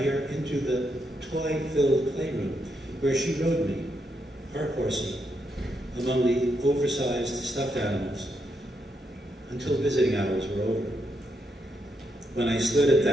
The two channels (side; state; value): both; normal; correlation 0.80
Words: her into the toy-filled playroom, where she rode me, her horsey, among the oversized stuffed animals, until visiting hours were over. When I stood at